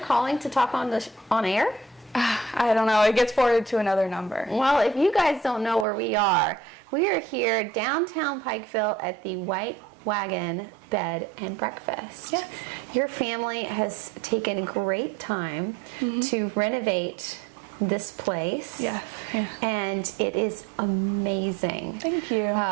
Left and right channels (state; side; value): drops out; left; at 5.9 s